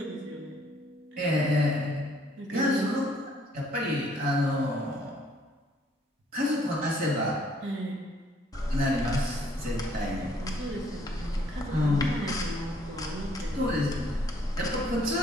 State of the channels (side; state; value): both; normal; correlation 0.64